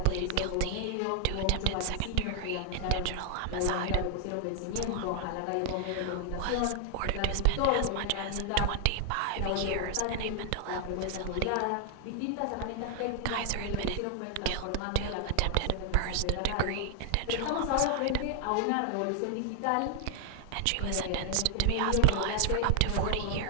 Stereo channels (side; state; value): both; different; correlation 0.00